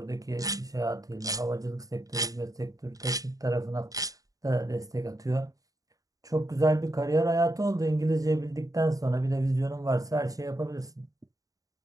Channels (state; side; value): late; left; 0.17 ms